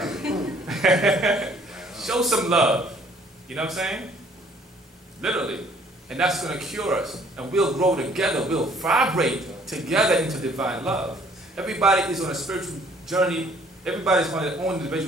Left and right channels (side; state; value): both; normal; correlation 0.59